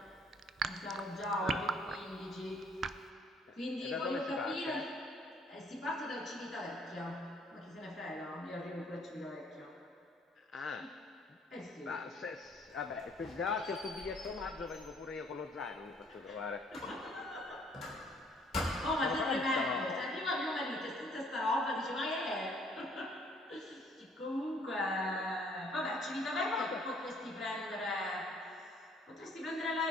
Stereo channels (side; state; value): both; normal; correlation 0.61